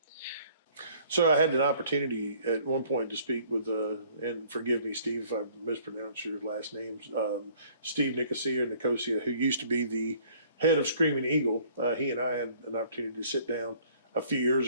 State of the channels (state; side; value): inverted; both; correlation -0.57